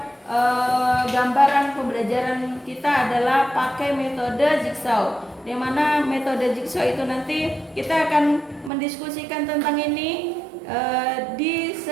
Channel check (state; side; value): drops out; left; at 8.7 s